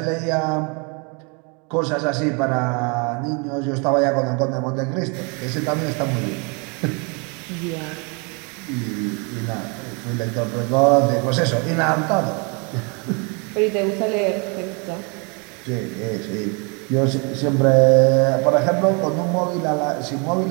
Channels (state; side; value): quieter; left; 33.2 dB